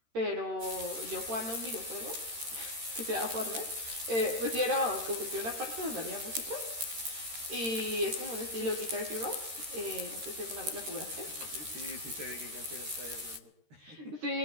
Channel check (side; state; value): left; late; 13 ms